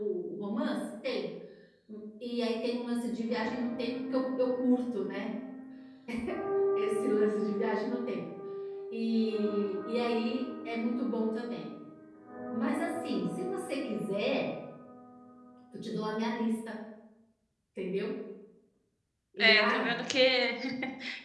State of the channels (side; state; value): both; identical; correlation 1.00